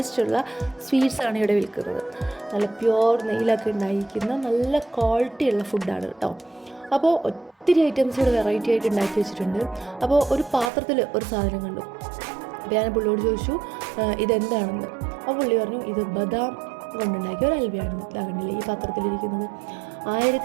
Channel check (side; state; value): left; drops out; at 10.7 s